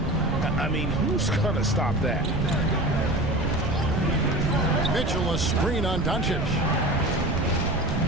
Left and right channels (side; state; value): right; noise; rumble, 2 dB below the sound